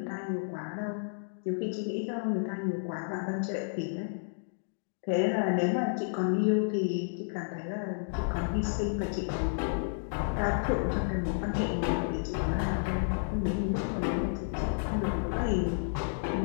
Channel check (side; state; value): right; silent; digital silence